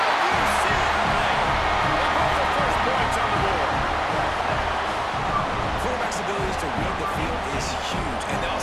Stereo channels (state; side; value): identical; both; correlation 1.00